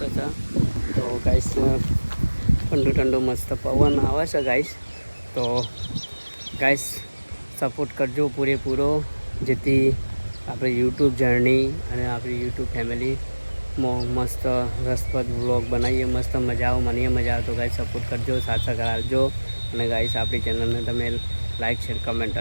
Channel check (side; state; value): both; inverted; correlation -1.00